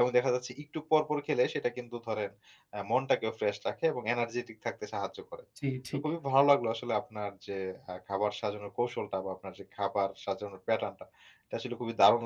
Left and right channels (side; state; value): both; identical; correlation 1.00